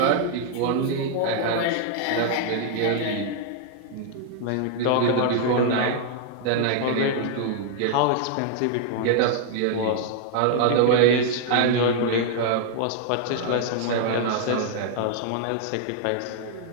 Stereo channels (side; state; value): both; different; correlation 0.00